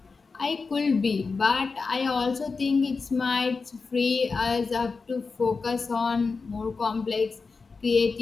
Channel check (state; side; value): quieter; right; 4.5 dB